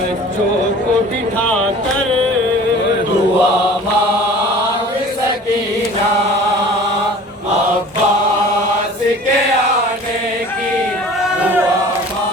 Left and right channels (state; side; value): normal; both; correlation 0.44